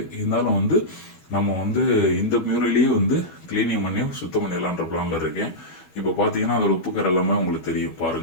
இருந்தாலும் வந்து நம்ம வந்து இந்த முறையிலேயே வந்து க்ளீனிங் பண்ணி சுத்தம் பண்ணிடலான்ற பிளானில் இருக்கேன். இப்போ பார்த்தீங்கன்னா அதில் உப்புக்கரை எல்லாமே உங்களுக்கு தெரியும்,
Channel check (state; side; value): late; right; 12 ms